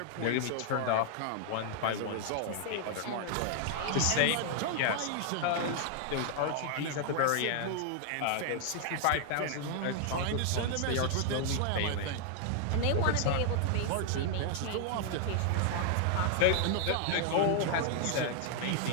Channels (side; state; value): both; different; correlation 0.00